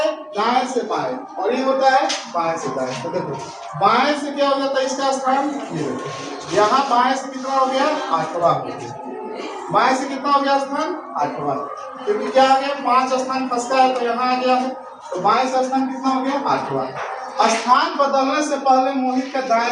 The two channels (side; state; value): both; identical; correlation 1.00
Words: दाएं से बाएं और ये होता है बाएं से दाएं, तो देखो बाएं से क्या हो जाता है इसका स्थान, ये देखो यहाँ बाएं से कितना हो गया 8वां हो गया, बाएं से कितना हो गया स्थान 8वां, क्योंकि क्या आ गया 5 स्थान खसका है तो यहाँ आ गया है, तो बाएं से स्थान कितना हो गया 8वां। स्थान बदलने से पहले मोहित का दाएं